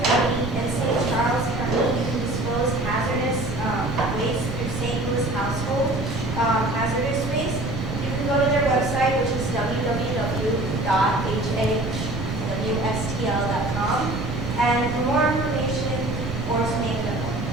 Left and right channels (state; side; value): noise; right; rumble, 7 dB below the sound